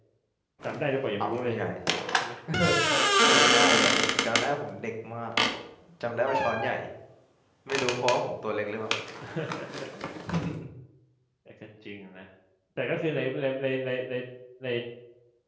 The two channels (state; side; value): identical; both; correlation 1.00